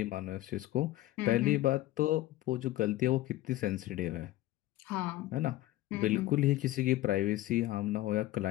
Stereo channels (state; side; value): quieter; right; 16.0 dB